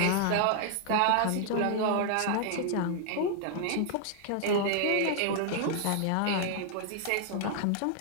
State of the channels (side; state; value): both; different; correlation 0.00